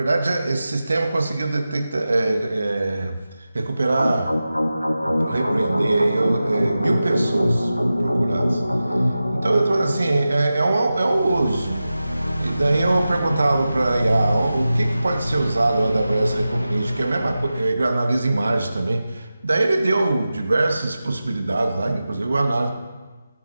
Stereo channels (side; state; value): both; inverted; correlation -0.94